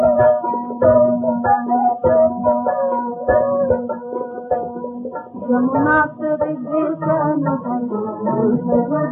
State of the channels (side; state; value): both; identical; correlation 1.00